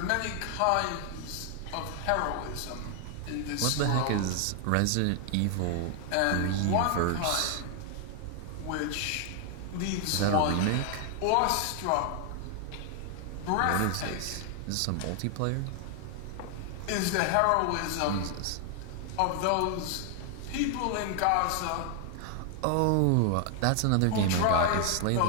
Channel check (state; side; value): different; both; correlation 0.00